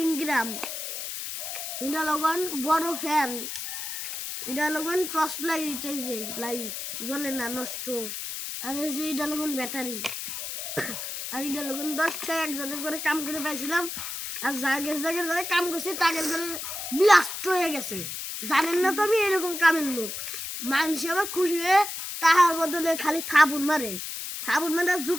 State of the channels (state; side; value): noise; left; hiss, 6 dB below the sound